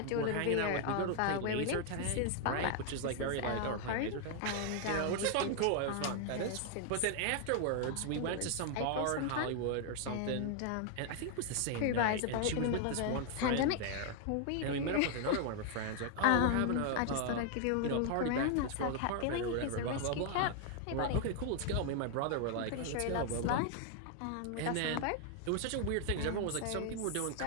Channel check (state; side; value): different; both; correlation 0.00